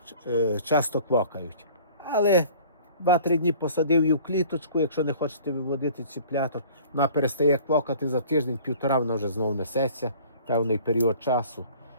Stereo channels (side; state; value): both; inverted; correlation -0.49